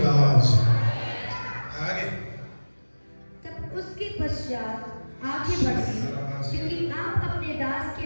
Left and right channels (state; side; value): inverted; both; correlation -1.00